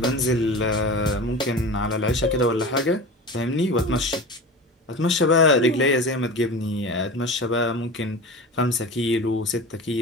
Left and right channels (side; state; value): both; normal; correlation 0.32